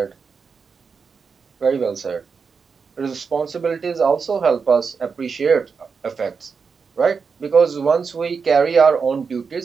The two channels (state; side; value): quieter; left; 5.5 dB